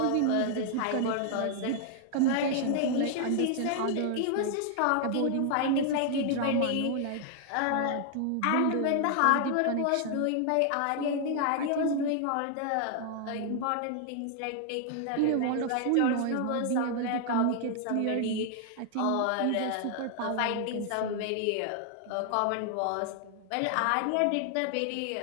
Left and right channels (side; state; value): both; different; correlation 0.00